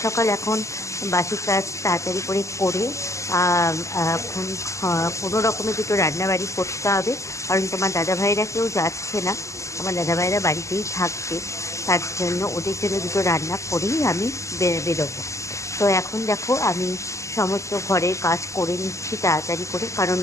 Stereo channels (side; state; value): right; late; 0.15 ms